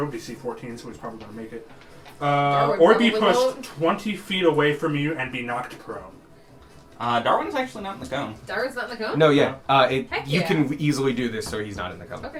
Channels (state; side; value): identical; both; correlation 1.00